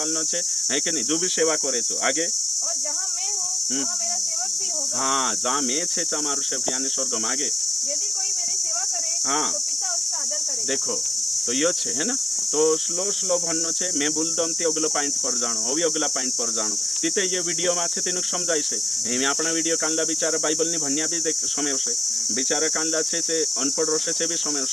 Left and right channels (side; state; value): both; normal; correlation 0.95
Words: छे है कि नहीं जो भी सेवा करे छो आगे और जहाँ मैं हूँ वहाँ मेरा सेवक भी होगा हाँ जहाँ मैं छे तमारू सेवक यानी स्वर्ग में आगे यदि कोई मेरी सेवा करे हाँ। तो पिता उसका आदर करेगा देखो तो यो छे है ना तो स्लो स्लो भन्नो छे मैं बोलदम ते अगलो पॉइंट पर जाणो अभी अगला पॉइंट पर जाणो तिते ये वीडियो में छे तेनु समजाय छे एमे आपणा वीडियो कांला बिचारा बाइबल नि भन्या भी देख समय छे बिचारा कांला छे ते अनपढ़ रसे छे भी समय